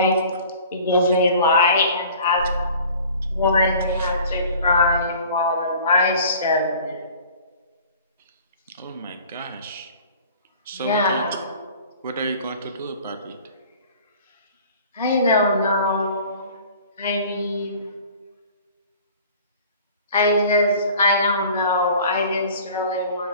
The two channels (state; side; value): inverted; both; correlation -0.47